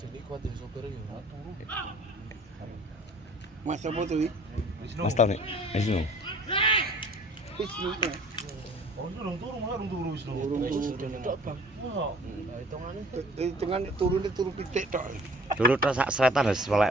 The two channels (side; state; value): both; normal; correlation 0.52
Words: Deni kuat ya sopir ya. Mas apa tuh iki? Mas tau nih. Wisnu. Wisnu. Oh, durung turu malah durung turu Wisnu. Tok Bang. Wah, hitungane Hitungan turune turu pitik tok. Dulu tok sak seretan wis welek